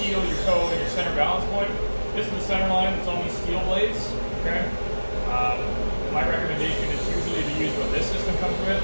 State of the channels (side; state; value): both; inverted; correlation -1.00